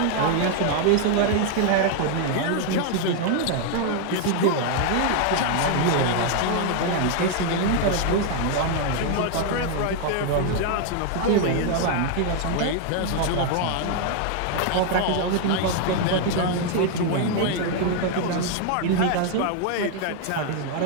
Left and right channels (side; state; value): both; different; correlation 0.00